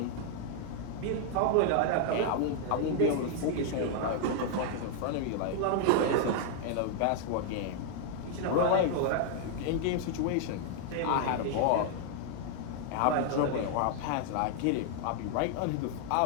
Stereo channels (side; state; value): both; different; correlation 0.00